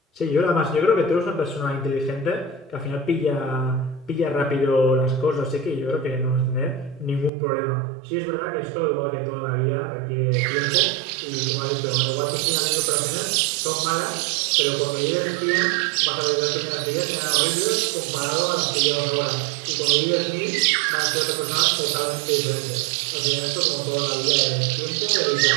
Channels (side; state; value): left; drops out; at 7.3 s